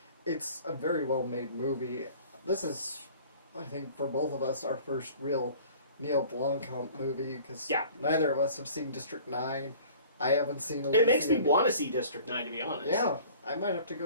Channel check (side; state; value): both; inverted; correlation -0.48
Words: it's a very well-made movie. This is, I think, for both of us, our first real Neill Blomkamp movie, because neither of us have seen District 9. I haven't seen Elysium. It makes me want to see District 9, to be honest. Yeah, I might have to